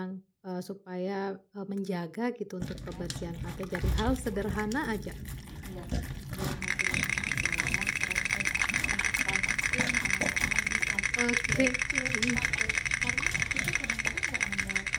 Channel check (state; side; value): identical; both; correlation 1.00